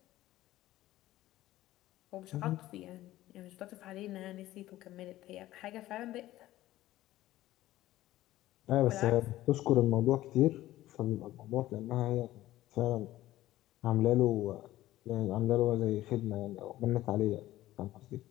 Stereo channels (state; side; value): quieter; right; 15.3 dB